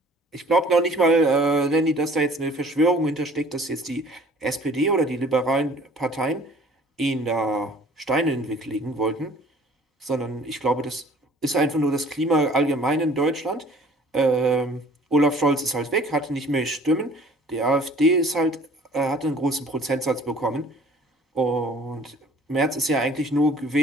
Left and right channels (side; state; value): both; normal; correlation 0.52